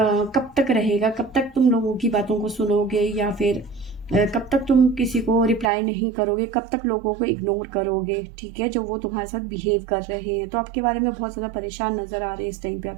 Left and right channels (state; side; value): drops out; left; at 5.7 s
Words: तक रहेगा, कब तक तुम लोगों की बातों को सुनोगे, या फिर कब तक तुम किसी को रिप्लाई नहीं करोगे, कब तक लोगों को इग्नोर करोगे। ठीक है, जो वो तुम्हारे साथ बिहेव कर रहे हैं, तो आपके बारे में बहुत ज़्यादा परेशान नज़र आ रहे हैं इस टाइम पे